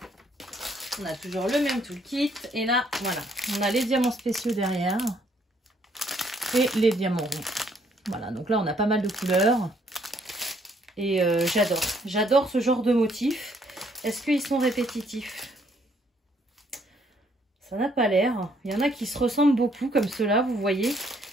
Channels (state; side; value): normal; both; correlation 0.67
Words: On a toujours le même toolkit. Et là, voilà, on a les diamants spéciaux derrière. Et les diamants ronds. Voilà, donc là, on a pas mal de couleurs. Et j'adore. J'adore ce genre de motifs. Est-ce qu'ils sont répétitifs? Ça n'a pas l'air. Il y en a qui se ressemblent beaucoup, comme ceux-là, vous voyez.